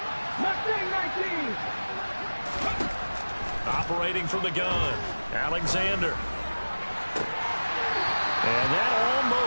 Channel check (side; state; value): both; inverted; correlation -1.00